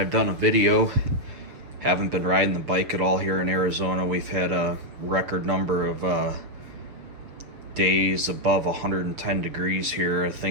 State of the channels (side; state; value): left; late; 7.2 ms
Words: done a video. Haven't been riding the bike at all here in Arizona. We've had a record number of days above 110 degrees here. I